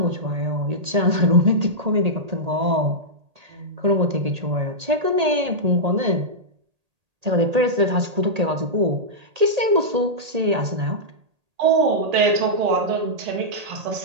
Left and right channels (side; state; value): left; late; 1.8 ms